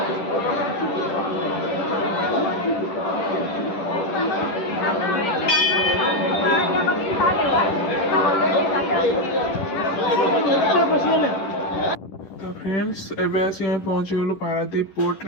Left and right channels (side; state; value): right; late; 10 ms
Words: तो फ्रेंड्स एबे आसी हम पहुंची गलु पारादीप पोर्ट